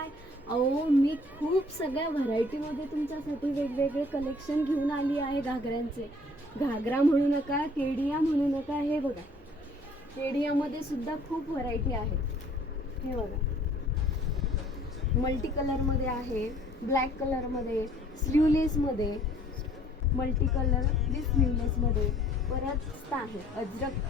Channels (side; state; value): both; normal; correlation 0.56